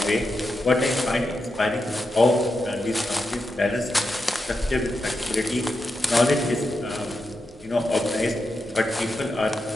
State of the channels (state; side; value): normal; both; correlation 0.87